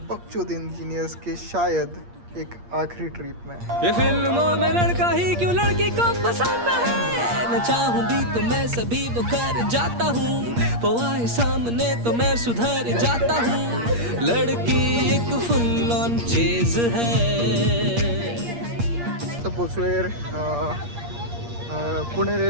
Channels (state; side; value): late; left; 8.5 ms